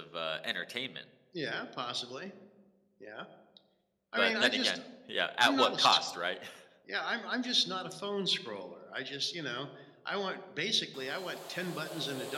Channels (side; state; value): both; identical; correlation 1.00